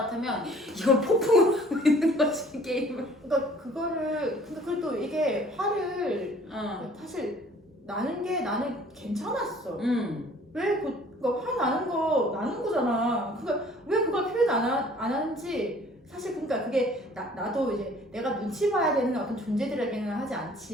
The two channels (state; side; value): normal; both; correlation 0.54